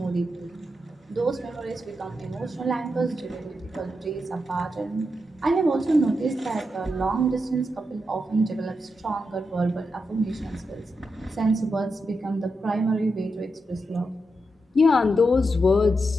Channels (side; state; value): both; normal; correlation 0.86